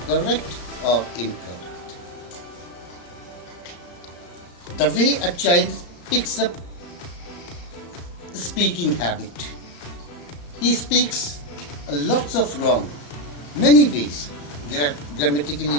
correct or incorrect. The way a child picks up speaking habit. He speaks lots of wrong, many ways, grammatically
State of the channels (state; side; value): late; right; 34 ms